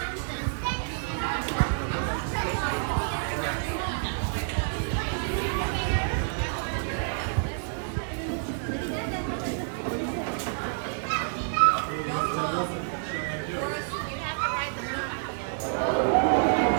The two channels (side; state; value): left; silent; 59 dB below the other